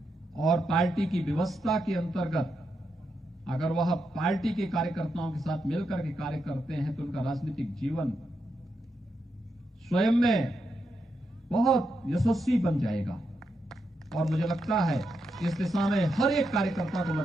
और पार्टी की व्यवस्था के अंतर्गत अगर वह पार्टी के कार्यकर्ताओं के साथ मिलकर के कार्य करते हैं तो उनका राजनीतिक जीवन स्वयं में बहुत यशस्वी बन जाएगा। और मुझे लगता है इस दिशा में हर एक कार्यकर्ता को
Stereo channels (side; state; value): both; normal; correlation 0.84